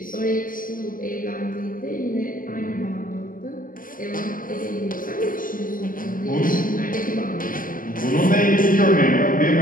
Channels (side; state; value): right; late; 0.40 ms